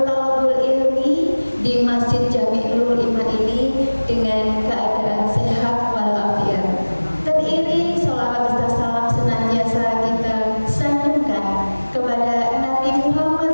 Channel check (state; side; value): inverted; both; correlation -1.00